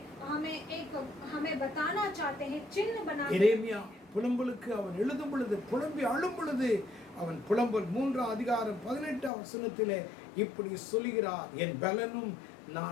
हमें बताना चाहते हैं, चिन्ह बनाना। எரேமியா புலம்பலுக்கு அவன் எழுதும் பொழுது, புலம்பி அழும் பொழுது, அவன் புலம்பல் 3 அதிகாரம் 18 வசனத்திலே இப்படி சொல்கிறார், என் பலனும்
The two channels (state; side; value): drops out; right; at 9.3 s